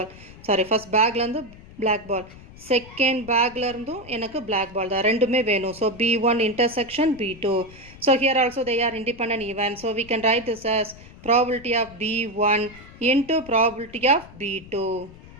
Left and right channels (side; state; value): left; noise; rumble, 19 dB below the sound